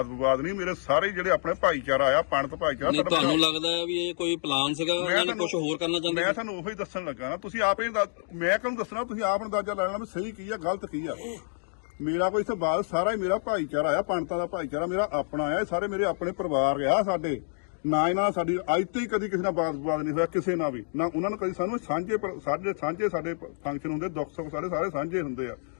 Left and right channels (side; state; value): right; silent; digital silence